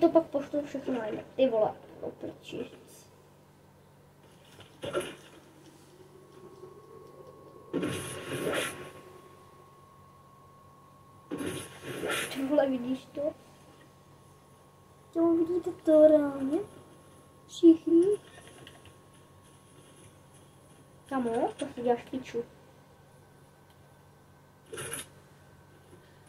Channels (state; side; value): identical; both; correlation 1.00